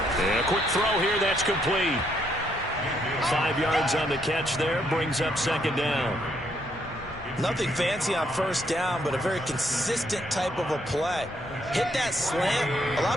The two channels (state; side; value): normal; both; correlation 0.73